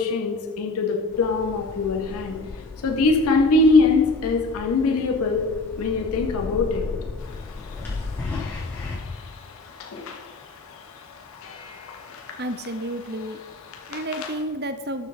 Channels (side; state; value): right; quieter; 3.0 dB